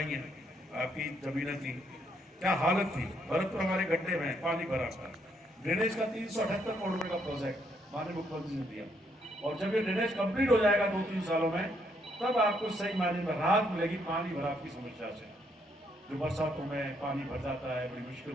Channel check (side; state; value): both; normal; correlation 0.72